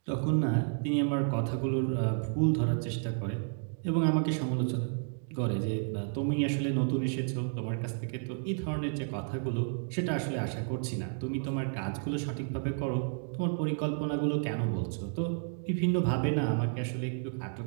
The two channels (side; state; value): left; silent; 57 dB below the other